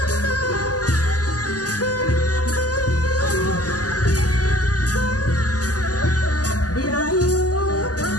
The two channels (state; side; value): late; right; 0.67 ms